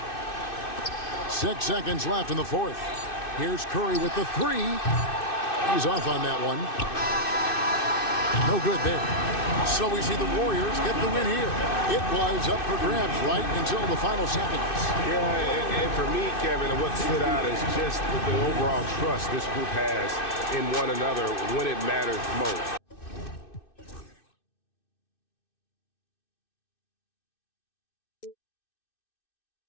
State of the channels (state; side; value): late; right; 2.6 ms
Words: 6 seconds left in the fourth. Here's Curry with the 3. He's off on that one. No good there. So we see the Warriors get the win here. It was up for grabs right until the final seconds. Yeah, and for me, Kevin, what stood out is just the overall trust this group has in one another when it matters most.